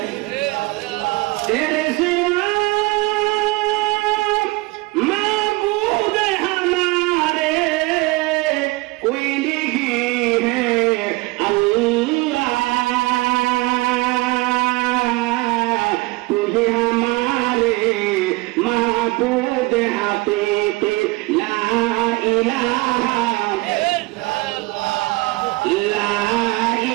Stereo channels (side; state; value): left; quieter; 23.1 dB